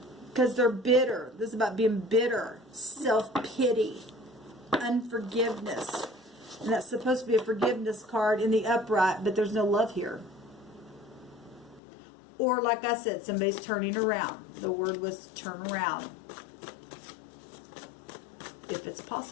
Because they're bitter. This is about being bitter. Self-pity. Unforgiveness. And that's supposed to be a forgiveness card in the upright, but there's no love here. Or, like I said, somebody's turning around. The word was turn around. If it's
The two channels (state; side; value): drops out; right; at 11.8 s